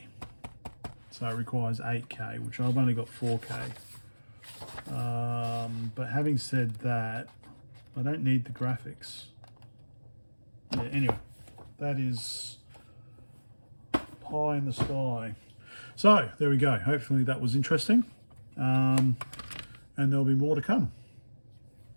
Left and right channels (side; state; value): both; inverted; correlation -1.00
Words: So it requires 8K, which I've only got 4K. But having said that, I don't need the graphics. Yeah, anyway, that is pie in the sky. So, there we go. Hopefully that was interesting. And there'll be more to come.